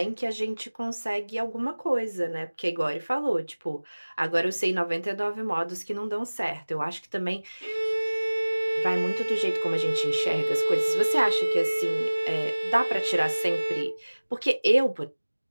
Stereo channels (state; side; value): inverted; both; correlation -1.00